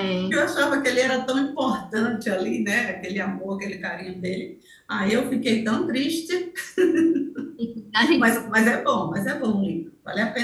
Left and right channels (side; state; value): both; identical; correlation 1.00